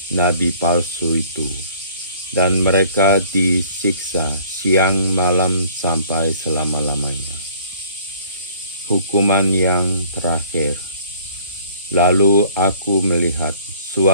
nabi palsu itu, dan mereka disiksa siang malam sampai selama-lamanya. Hukuman yang terakhir. Lalu aku melihat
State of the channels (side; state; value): both; inverted; correlation -0.54